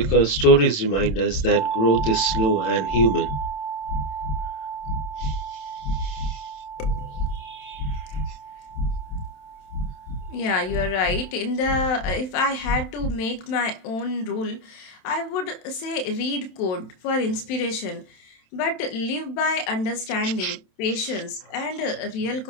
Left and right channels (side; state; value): right; late; 27 ms